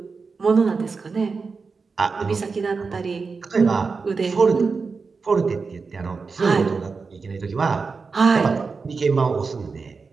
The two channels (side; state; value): left; quieter; 4.7 dB